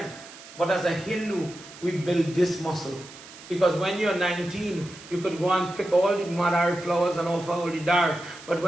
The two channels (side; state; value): right; noise; hiss, 18 dB below the sound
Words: But as a Hindu, we build this muscle. Because when you're 19, you could go and pick all the madar flowers and offer all the dar. But